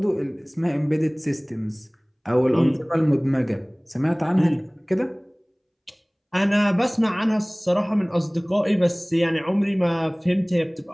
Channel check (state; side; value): identical; both; correlation 1.00